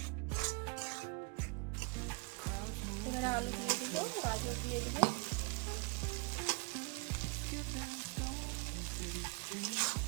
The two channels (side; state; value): left; quieter; 30.0 dB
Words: এবারে আলু দিয়ে দেবো, গাজর দিয়ে দেবো,